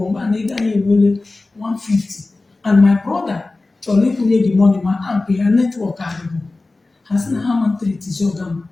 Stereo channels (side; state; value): right; quieter; 3.3 dB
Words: mgbe a na-ega ya ewere 150 and my brother chọrọ ịkwụnye the money ma amp ya netwọk adịbụ ha sị na ha ma ntritizi ọga m